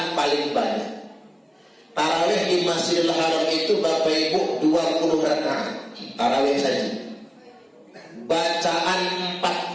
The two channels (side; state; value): both; identical; correlation 1.00